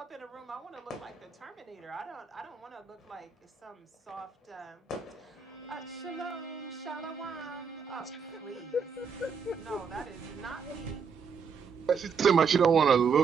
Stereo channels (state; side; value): quieter; left; 5.9 dB